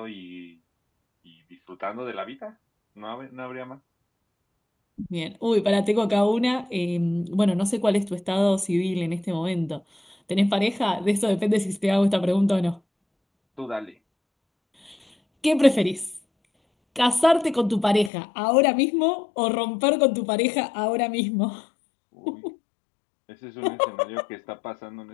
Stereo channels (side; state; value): right; drops out; at 18.1 s